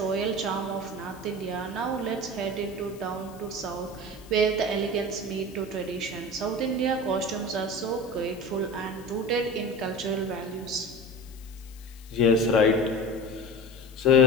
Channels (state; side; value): noise; left; hiss, 23 dB below the sound